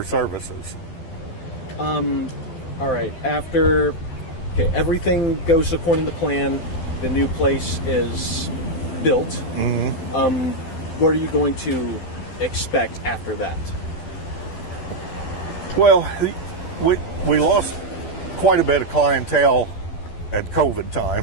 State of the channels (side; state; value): right; late; 12 ms